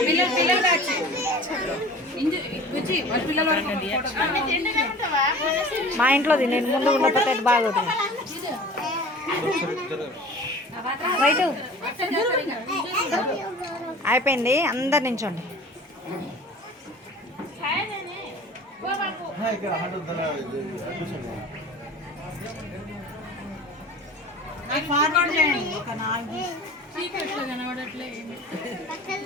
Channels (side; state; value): both; normal; correlation 0.42